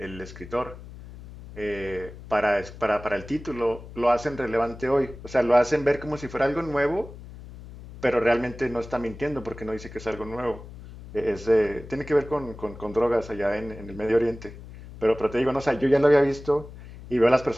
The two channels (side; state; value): left; noise; hum, 15 dB below the sound